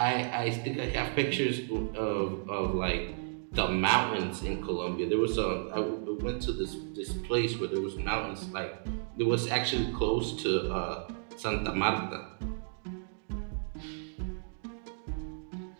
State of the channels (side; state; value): left; silent; digital silence